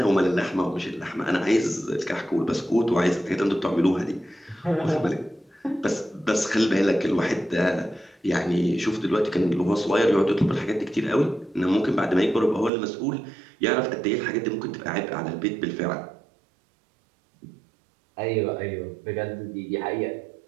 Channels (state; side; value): drops out; left; at 12.7 s